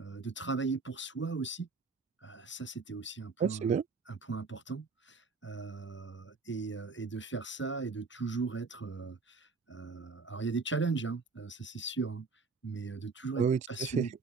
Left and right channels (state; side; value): quieter; left; 4.5 dB